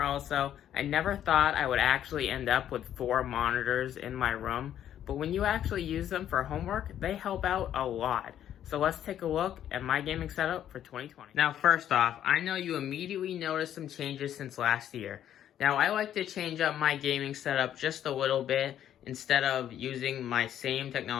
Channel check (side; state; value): right; quieter; 10.7 dB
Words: also, I never thought I would actually end up with 4 monitors in my room, but when you actually use them for homework, they help out a lot. So let's take a look at my gaming setup for 2020. Now, first off, I know you immediately noticed some changes since last year. Now, I like to change up my gaming setup just a little bit instead of using my same